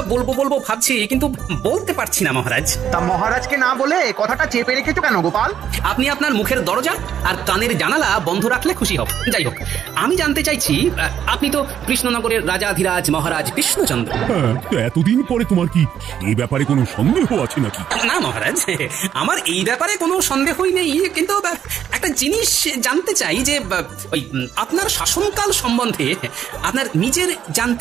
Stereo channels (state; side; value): quieter; left; 9.4 dB